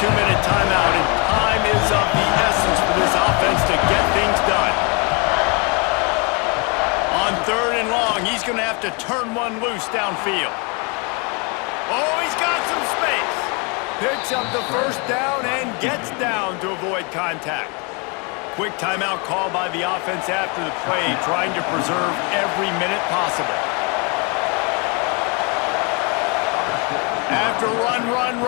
2-minute timeout, and time is of the essence for this offense to get things done. On 3rd and long, he's going to have to turn one loose downfield. Oh, he's got some space. Picks up the 1st down and gets down to avoid contact. Quick timeout call by the offense after the play, trying to preserve every minute possible. After run,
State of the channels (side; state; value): right; quieter; 32.6 dB